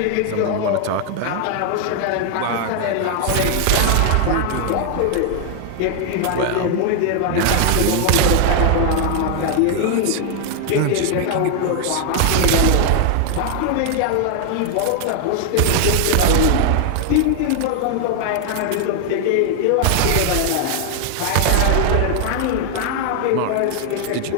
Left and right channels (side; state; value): both; different; correlation 0.00